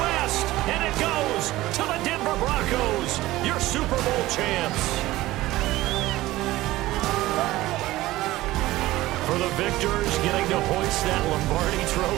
and it goes to the Denver Broncos, your Super Bowl champs. For the victors, getting to hoist that Lombardi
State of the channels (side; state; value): left; quieter; 17.2 dB